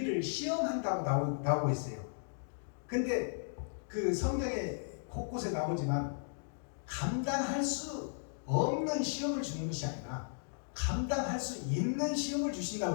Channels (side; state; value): right; silent; digital silence